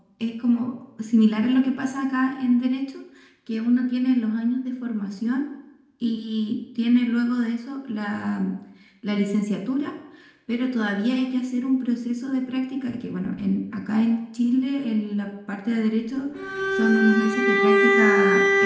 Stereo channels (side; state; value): both; identical; correlation 1.00